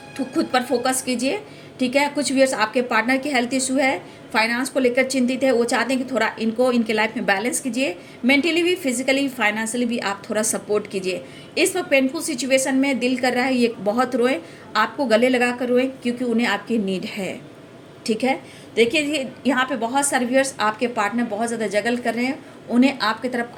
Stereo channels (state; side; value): identical; both; correlation 1.00